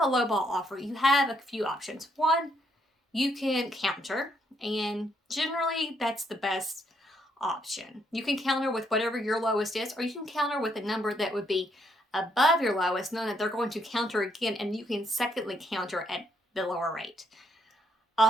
a lowball offer, you have a few options. One, you can counter, and generally that's the best option. You can counter with whatever your lowest is, or you can counter with a number that would be above your lowest, knowing that they're going to counter again, and you can secondly counter at the lower rate.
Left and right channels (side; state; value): both; normal; correlation 0.73